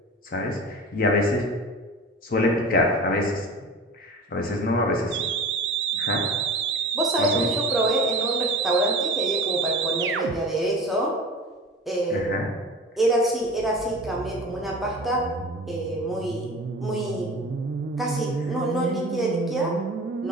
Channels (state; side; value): normal; both; correlation 0.36